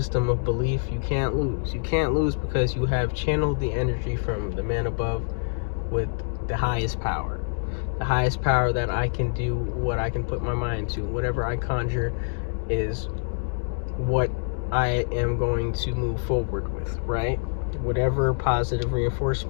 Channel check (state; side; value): silent; right; digital silence